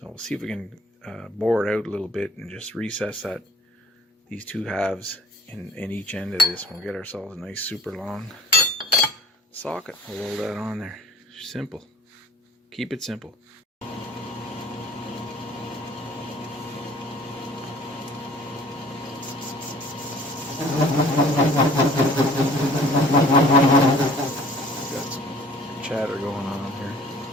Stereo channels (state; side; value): normal; both; correlation 0.50